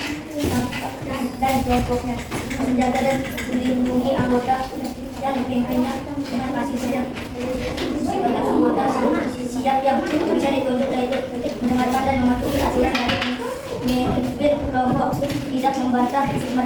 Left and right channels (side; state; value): both; identical; correlation 1.00